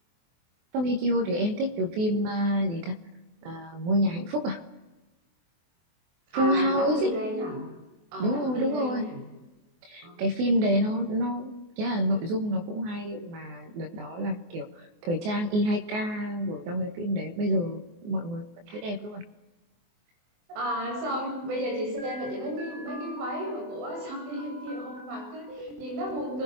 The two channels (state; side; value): late; left; 24 ms